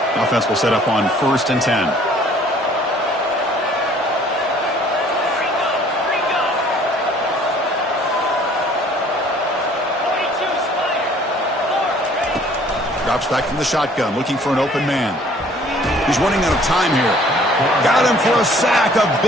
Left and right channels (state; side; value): normal; both; correlation 0.56